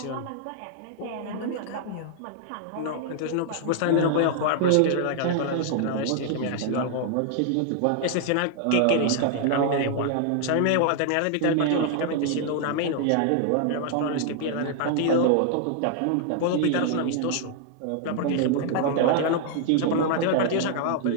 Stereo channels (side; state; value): both; different; correlation 0.00